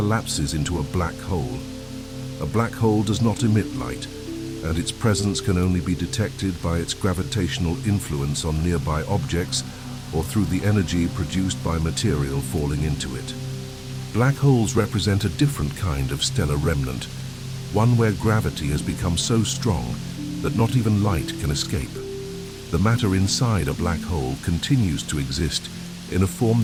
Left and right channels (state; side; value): identical; both; correlation 1.00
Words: into a black hole. A black hole does not emit light, and its presence can only be detected by its gravitational influence on nearby objects or through the energy produced by material falling into it. Black holes represent a different kind of stellar remnant, one where gravity has become so strong that not even light can escape. The matter inside a black hole continues to exist in a form